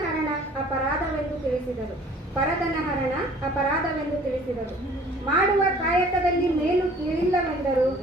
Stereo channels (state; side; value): normal; both; correlation 0.52